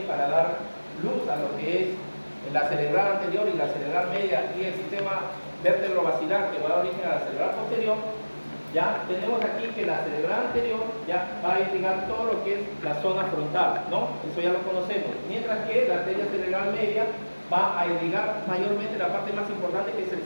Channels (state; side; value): inverted; both; correlation -1.00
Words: para dar luz a lo que es la cerebral anterior y la cerebral media y el sistema vértebro-basilar que va a dar origen a la cerebral posterior. Ya tenemos aquí que la cerebral anterior ya va a irrigar todo lo que es la zona frontal, ¿no? Eso ya lo conocemos. Mientras que la arteria cerebral media va a irrigar mayormente la parte más importante, que es el